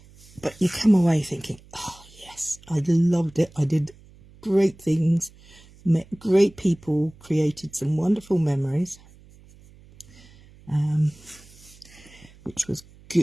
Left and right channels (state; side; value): noise; right; hum, 24 dB below the sound